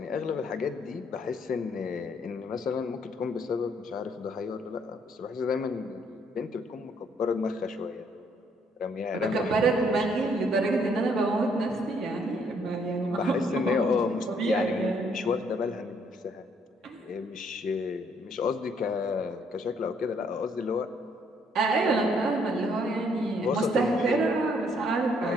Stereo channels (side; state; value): both; normal; correlation 0.68